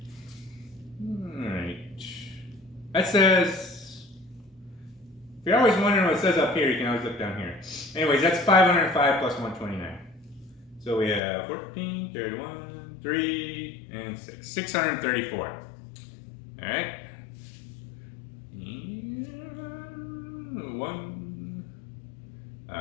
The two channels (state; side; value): drops out; right; at 11.2 s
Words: Alright. That says, if you're always wondering what it says up here, you can always look down here. Anyways, that's 505 plus 129. So we have 14, 31, 3, and 6. 634. All right. And